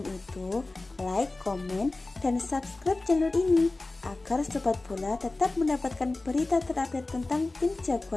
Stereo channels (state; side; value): quieter; right; 3.1 dB